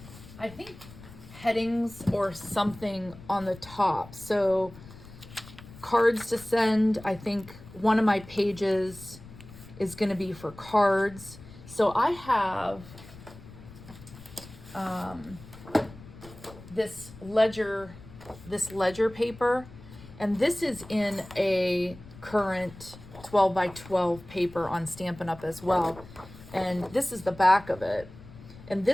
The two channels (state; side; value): noise; left; rumble, 18 dB below the sound